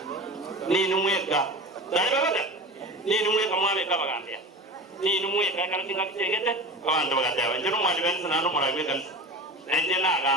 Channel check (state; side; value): normal; both; correlation 0.32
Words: ni numweka dali babada ni numweka mwabe kabagambya ni numweka kana tinga kitegete abantu bagatya njero mwali benza nando muragwe kanisa nende na